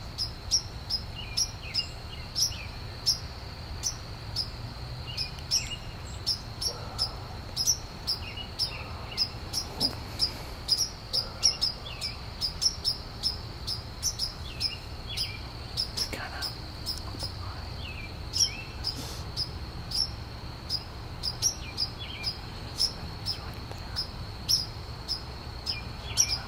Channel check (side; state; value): both; identical; correlation 1.00